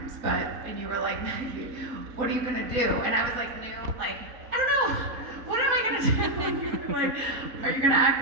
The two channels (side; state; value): left; late; 3.9 ms